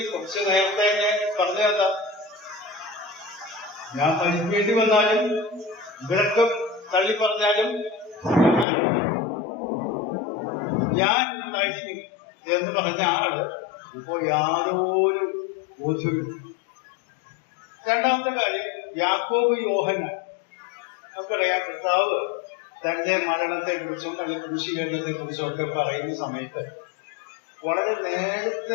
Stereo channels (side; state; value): right; drops out; at 8.7 s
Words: കുറച്ച് നേരത്തെ പറഞ്ഞതാ, ഞാൻ മരിക്കേണ്ടി വന്നാലും ഇവരൊക്കെ തള്ളി പറഞ്ഞാലും ഞാൻ ഉണ്ടായിരിക്കും എന്ന് പറഞ്ഞ ആള് ഇപ്പോ യാതൊരു ബോധ്യവും. രണ്ടാമത്തെ കാര്യം, യാക്കോബ് യോഹന്നാൻ. നമുക്കറിയാം, കർത്താവ് തന്റെ മരണത്തെ കുറിച്ചും അല്ലെങ്കിൽ കുരിശീകരണത്തെ കുറിച്ചും ഒക്കെ പറയുന്ന സമയത്ത് വളരെ